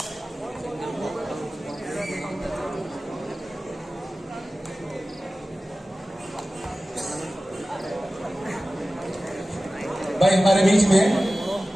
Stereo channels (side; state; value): both; normal; correlation 0.96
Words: भाई हमारे बीच में